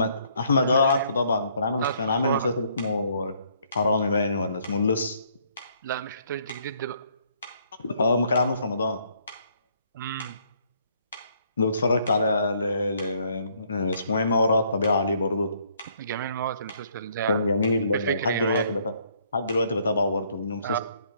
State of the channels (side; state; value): both; inverted; correlation -0.67